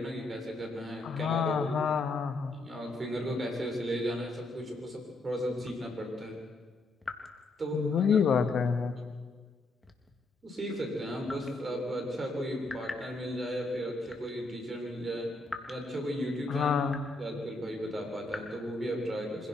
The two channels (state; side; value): quieter; right; 3.1 dB